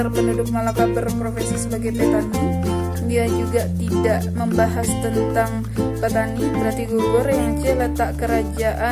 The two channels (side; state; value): both; identical; correlation 1.00